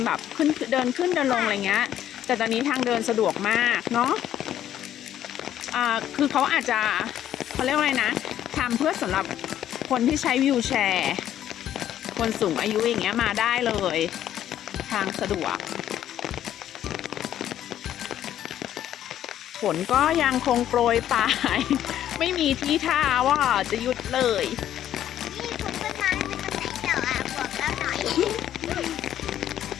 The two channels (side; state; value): right; quieter; 11.3 dB